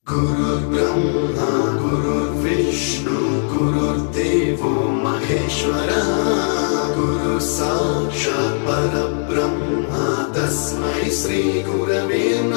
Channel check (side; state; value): right; silent; 62 dB below the other